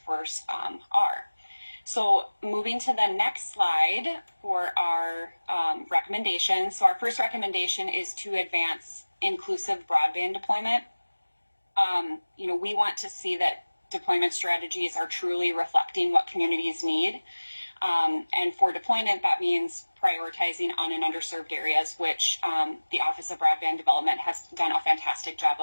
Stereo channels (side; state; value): both; inverted; correlation -1.00